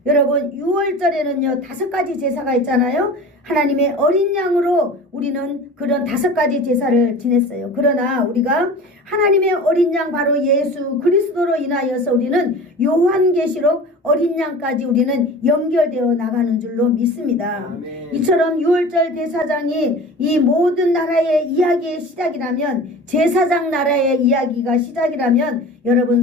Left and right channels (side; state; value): both; normal; correlation 0.37